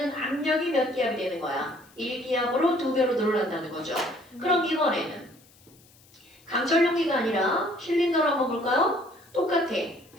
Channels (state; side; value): noise; left; hiss, 28 dB below the sound